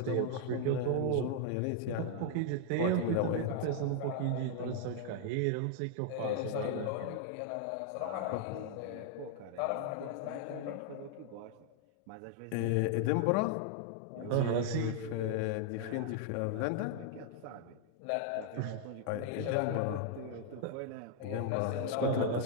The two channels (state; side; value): different; both; correlation 0.00